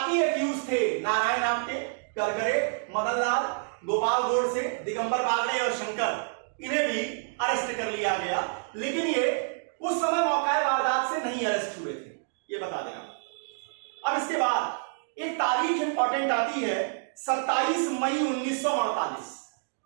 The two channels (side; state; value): left; silent; digital silence